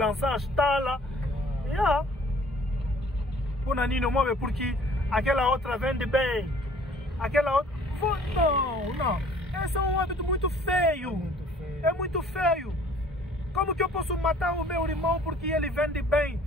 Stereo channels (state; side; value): normal; both; correlation 0.54